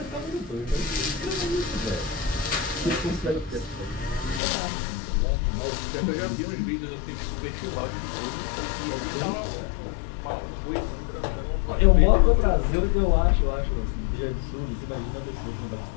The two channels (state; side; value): drops out; right; at 4.4 s